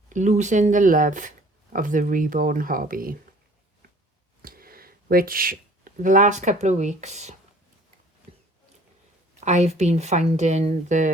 losing the love of the reborn hobby, which the last couple of weeks I've been finding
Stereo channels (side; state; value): both; normal; correlation 0.53